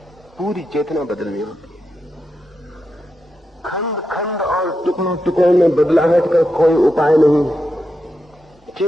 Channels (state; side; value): normal; both; correlation 0.86